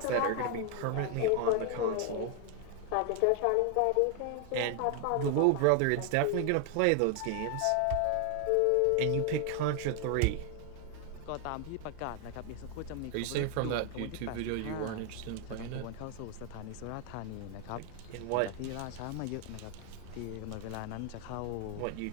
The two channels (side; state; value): both; different; correlation 0.01